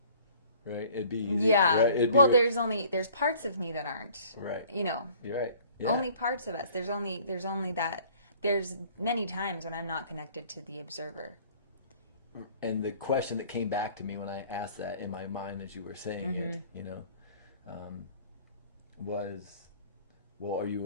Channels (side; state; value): both; inverted; correlation -0.52